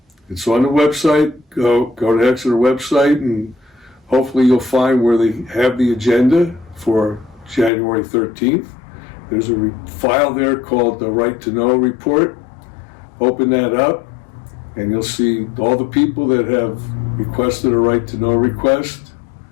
It's on the website. Go to Exeter website, and hopefully you'll find where they have the agenda for January 13th. There's a file there called the Right to Know report. Open that up, and you'll see all the people that have requested a Right to Know request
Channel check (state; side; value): drops out; right; at 7.7 s